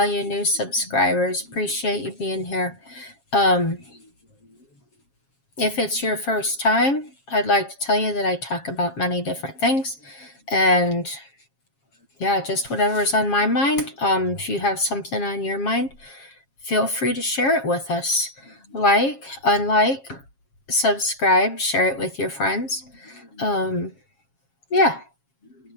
you new subscribers. Appreciate you being here. Um, if it's your first time, I'd like to tell you that I talk about many different things. And yeah, just whatever's on my mind. If you have something on your mind, feel free to share it with us. Like, unlike, subscribe, share it with your friends. Um, yeah.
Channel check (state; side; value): late; right; 7.4 ms